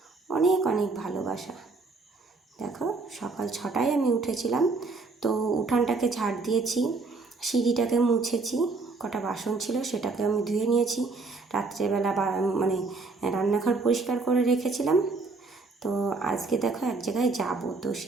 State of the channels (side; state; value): left; quieter; 3.9 dB